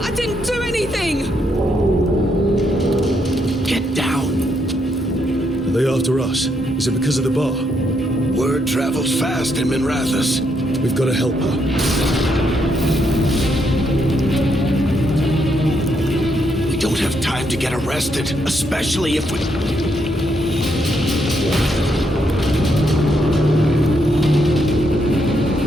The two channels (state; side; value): normal; both; correlation 0.77